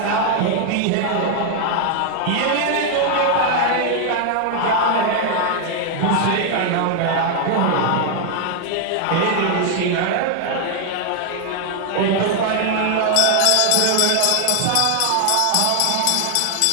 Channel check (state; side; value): different; both; correlation 0.00